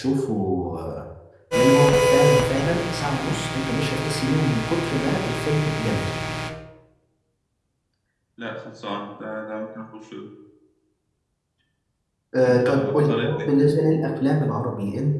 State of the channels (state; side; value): identical; both; correlation 1.00